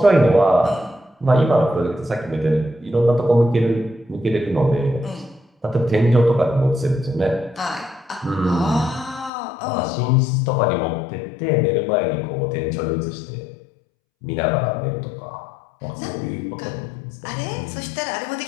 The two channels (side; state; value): right; drops out; at 9.3 s